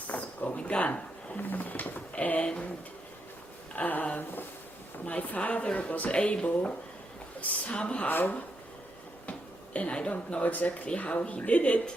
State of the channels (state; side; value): normal; both; correlation 0.81